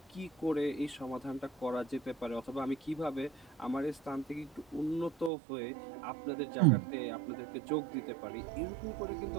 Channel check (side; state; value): left; drops out; at 5.3 s